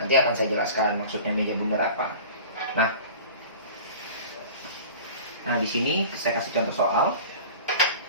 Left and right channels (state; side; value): inverted; both; correlation -0.40